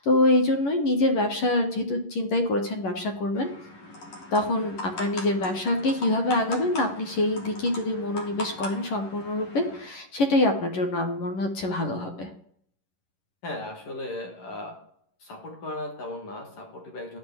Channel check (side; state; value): right; late; 11 ms